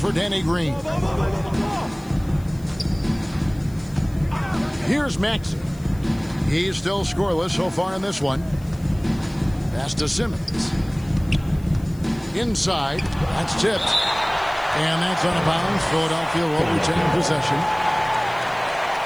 Danny Green. Here's Maxey. He's still scoreless so far in this one. Pass to Simmons. Inside. That's tipped. And that's out of bounds. Philadelphia will retain possession.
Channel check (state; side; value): noise; left; hiss, 25 dB below the sound